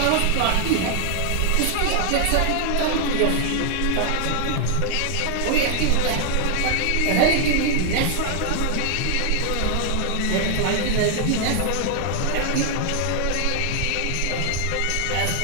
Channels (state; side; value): different; both; correlation 0.00